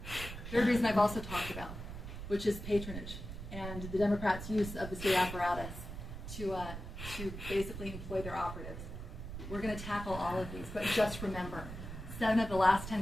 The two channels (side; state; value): right; noise; rumble, 9 dB below the sound